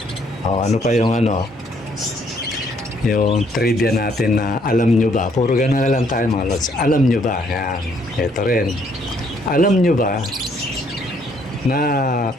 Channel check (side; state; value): both; normal; correlation 0.67